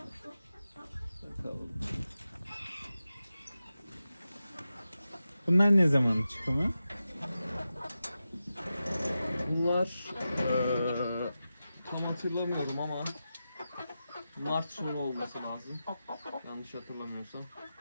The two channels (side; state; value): both; inverted; correlation -0.92